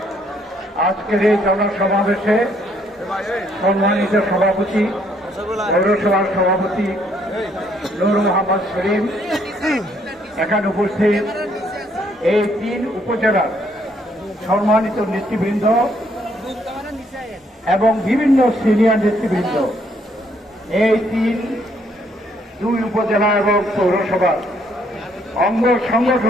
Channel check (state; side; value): normal; both; correlation 0.69